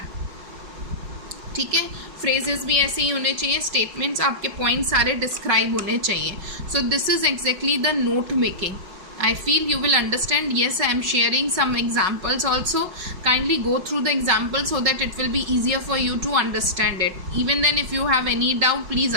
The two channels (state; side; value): late; left; 5.4 ms